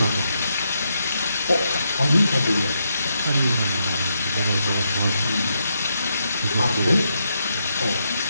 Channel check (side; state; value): both; inverted; correlation -0.80